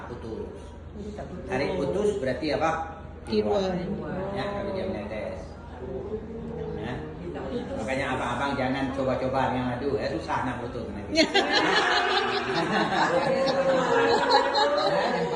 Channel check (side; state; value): both; identical; correlation 1.00